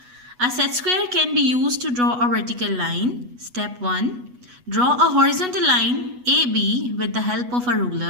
A set square can be used to draw a vertical line. Step 1. Draw a horizontal line AB with the help of a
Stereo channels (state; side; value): late; left; 8.2 ms